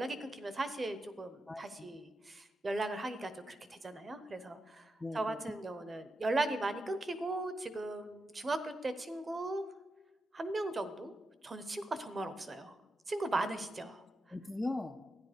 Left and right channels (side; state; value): both; normal; correlation 0.87